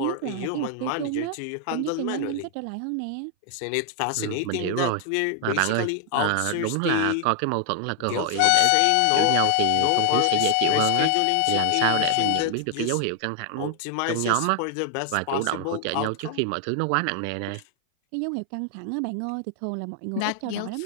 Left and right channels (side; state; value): both; different; correlation 0.00